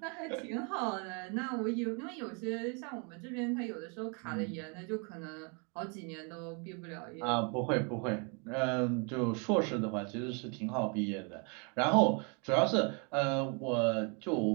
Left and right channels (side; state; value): left; quieter; 35.1 dB